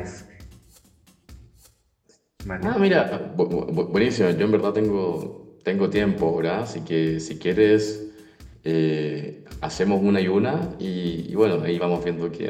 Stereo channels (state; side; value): identical; both; correlation 1.00